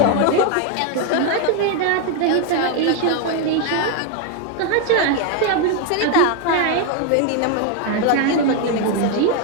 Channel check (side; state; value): both; different; correlation 0.01